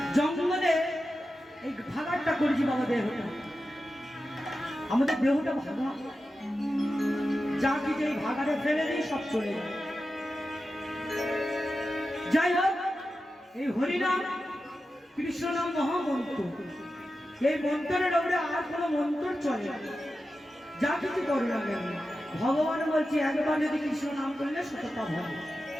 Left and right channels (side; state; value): both; normal; correlation 0.91